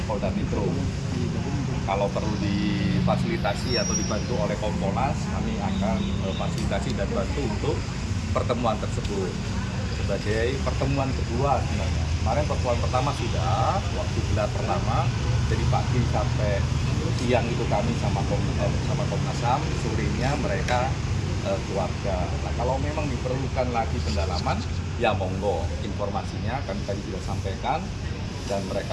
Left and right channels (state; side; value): identical; both; correlation 1.00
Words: Polda Metro. Kalau perlu difasilitasi atau dibantu oleh Kompolnas, kami akan fasilitasi dan bantu untuk pertemuan tersebut. Sebagai pertemuan kedua sebenarnya. Kemarin pertemuan pertama sudah, waktu gelar pertama, jadi pagi sampai siang itu kami sama Komnas HAM, sorenya mereka keluarga. Nah, kalau memang diperlukan lagi pendalaman, ya monggo informasinya kami tadi sudah sampaikan dan